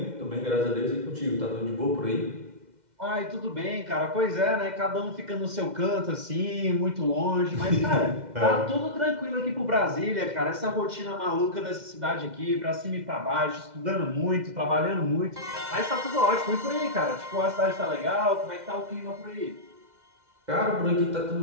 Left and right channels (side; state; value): left; late; 2.1 ms